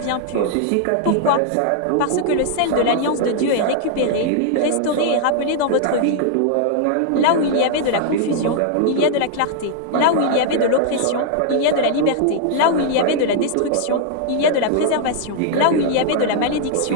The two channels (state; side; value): different; both; correlation 0.00